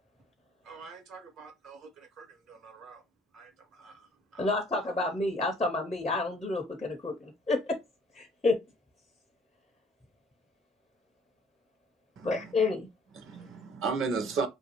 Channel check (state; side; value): normal; both; correlation 0.58